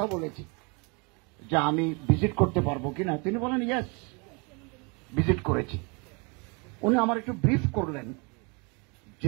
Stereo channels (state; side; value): quieter; left; 31.8 dB